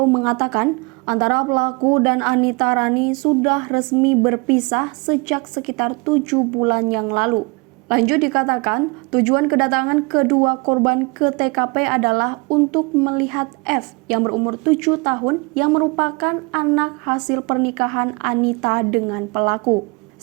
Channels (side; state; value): left; quieter; 28.8 dB